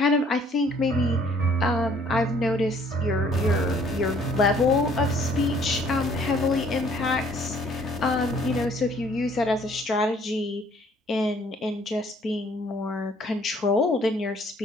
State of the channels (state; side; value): normal; both; correlation 0.59